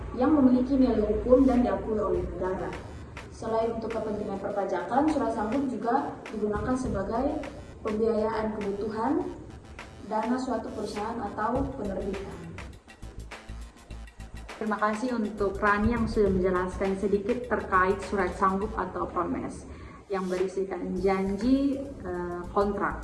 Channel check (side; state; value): both; identical; correlation 1.00